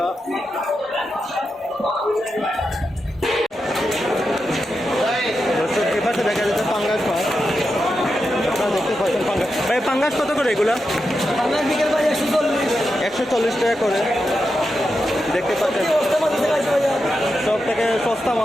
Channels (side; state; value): both; normal; correlation 0.88